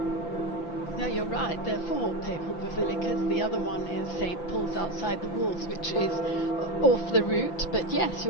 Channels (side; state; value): right; late; 5.9 ms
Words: No, you're right. There are 4 papal basilicas. The other one is St. Paul's outside the walls, which is off the route. But yes,